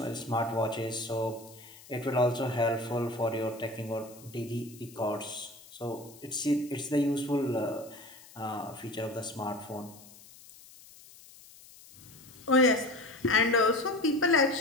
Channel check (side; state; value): left; noise; hiss, 21 dB below the sound